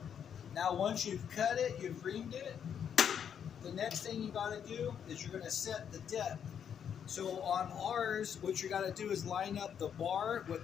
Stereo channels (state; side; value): quieter; right; 8.2 dB